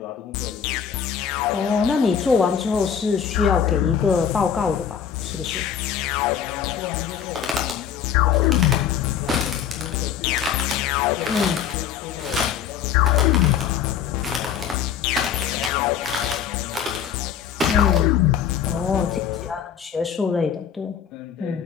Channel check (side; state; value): right; quieter; 8.3 dB